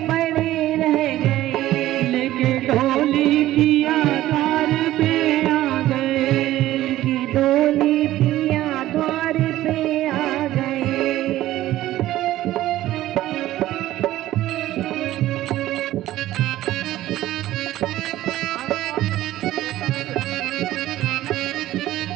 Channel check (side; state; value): left; quieter; 14.8 dB